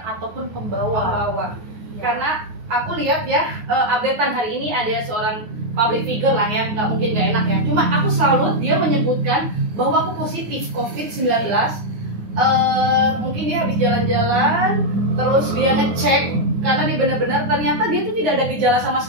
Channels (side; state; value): left; late; 9.6 ms